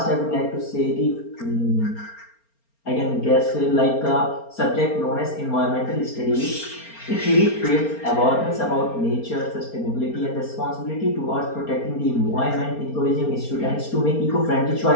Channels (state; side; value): late; right; 4.3 ms